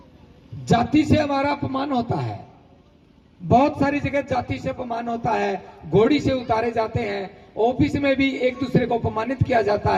जाति से हमारा अपमान होता है, बहुत सारी जगह जाति से अपमान होता है, घोड़ी से उतारे जाते हैं, ऑफिस में भी एक दूसरे को अपमानित किया जाता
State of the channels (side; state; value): both; identical; correlation 1.00